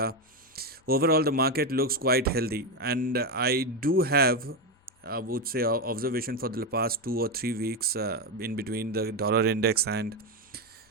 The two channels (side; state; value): both; normal; correlation 0.10